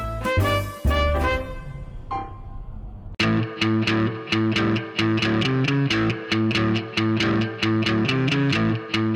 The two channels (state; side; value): identical; both; correlation 1.00